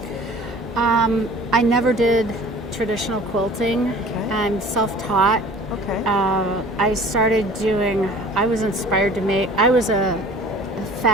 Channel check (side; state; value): both; normal; correlation 0.47